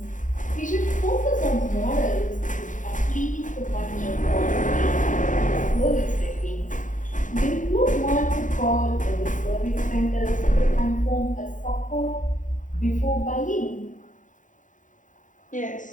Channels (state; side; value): late; right; 0.37 ms